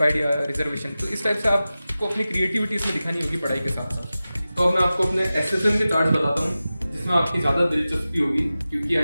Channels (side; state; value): both; inverted; correlation -0.95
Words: या रिजर्वेशन। तो इस टाइप से आपको अपनी क्रिएटिविटी इसमें दिखानी होगी पढ़ाई के साथ साथ। तो अब मैं आपको अपने SFM के चार्ट बताता हूँ जिसमें आपकी ज़्यादा दिलचस्पी होगी, क्योंकि